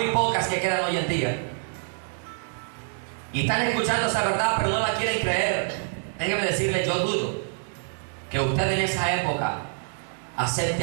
pocas que quedan hoy en día, y están escuchando esa verdad pero no la quieren creer, déjeme decirle, yo dudo que usted en esa época acepte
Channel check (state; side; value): silent; left; digital silence